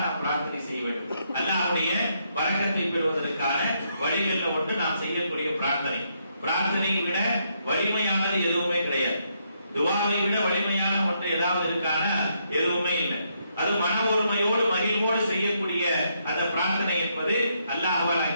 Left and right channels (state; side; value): inverted; both; correlation -0.76